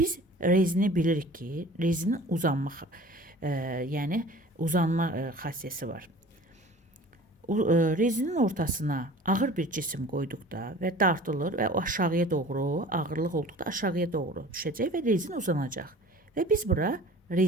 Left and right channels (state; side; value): normal; both; correlation 0.44